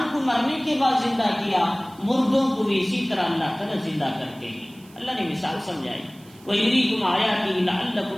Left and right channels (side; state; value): right; noise; hiss, 26 dB below the sound